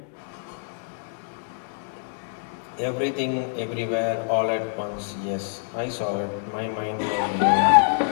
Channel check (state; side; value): silent; right; 60 dB below the other